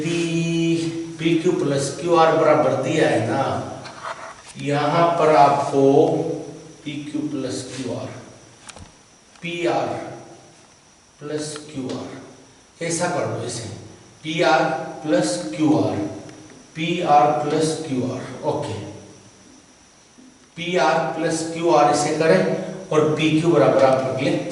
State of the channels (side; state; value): both; identical; correlation 1.00